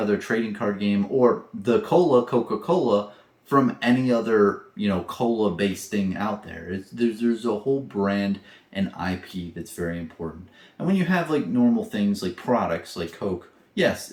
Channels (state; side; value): identical; both; correlation 1.00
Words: trading card game or the Coca-Cola from any other, cola-based thing out there. There's a whole brand and IP that's very important. And when you have like normal things like products like Coke, yes,